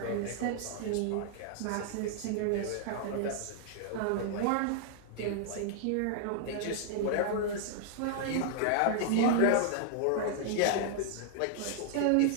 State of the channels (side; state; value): both; different; correlation -0.01